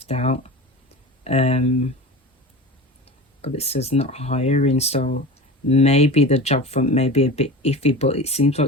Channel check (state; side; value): normal; both; correlation 0.32